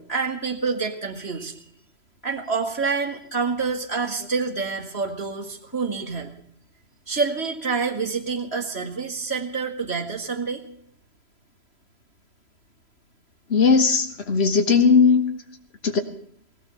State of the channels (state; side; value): late; right; 3.0 ms